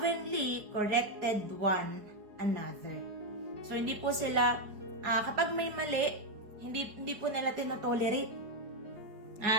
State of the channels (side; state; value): left; late; 4.7 ms